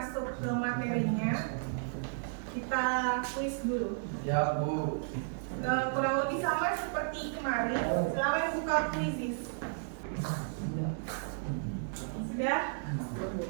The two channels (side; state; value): left; silent; 56 dB below the other